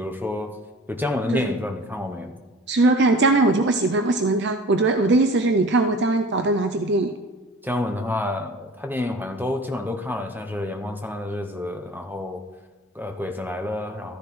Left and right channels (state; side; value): normal; both; correlation 0.43